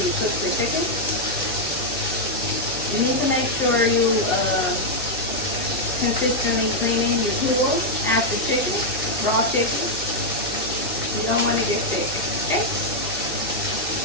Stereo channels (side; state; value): both; normal; correlation -0.02